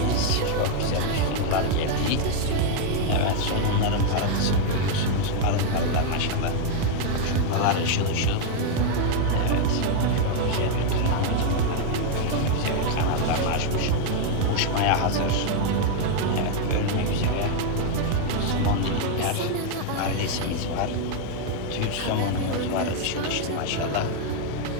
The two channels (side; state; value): both; different; correlation 0.00